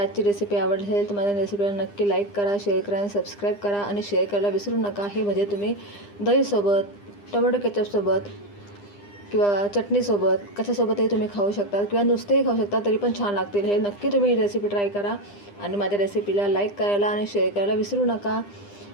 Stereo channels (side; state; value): right; late; 9.9 ms